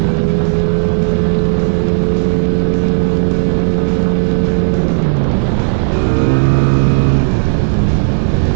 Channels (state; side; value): silent; left; digital silence